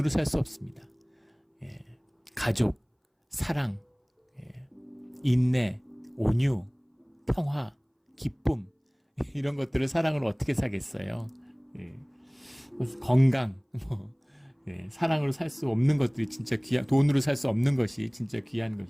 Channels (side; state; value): both; identical; correlation 1.00